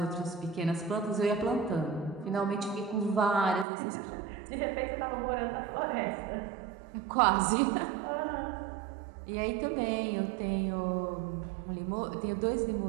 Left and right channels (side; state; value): left; drops out; at 3.7 s